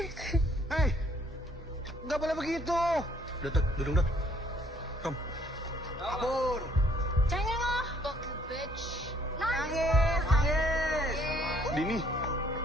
Hei, nggak boleh begitu. Duduk. Kom. Kabur. Cengeng ah. Nangis. Dini.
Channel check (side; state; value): both; normal; correlation 0.63